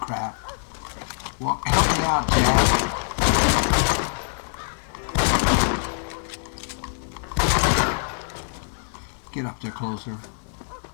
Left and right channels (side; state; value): right; silent; 60 dB below the other